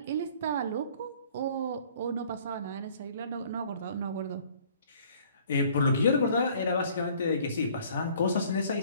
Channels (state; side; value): inverted; both; correlation -0.55